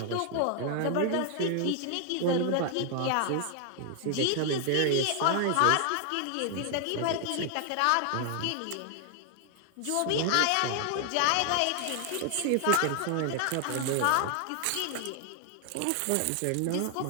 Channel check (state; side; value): different; both; correlation 0.00